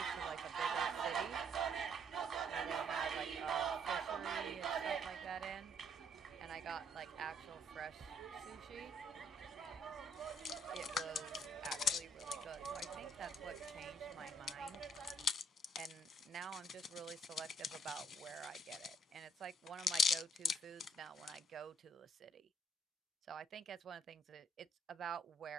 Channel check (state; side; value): normal; both; correlation 0.65